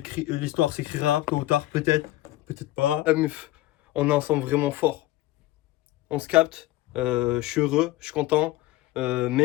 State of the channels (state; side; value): quieter; right; 16.7 dB